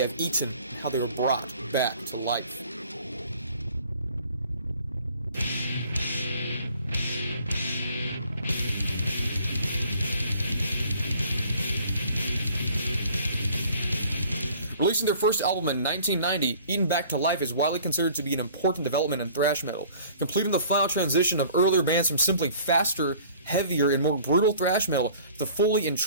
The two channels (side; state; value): both; inverted; correlation -0.51